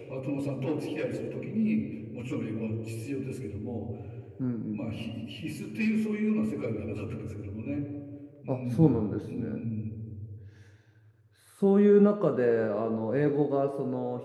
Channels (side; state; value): both; identical; correlation 1.00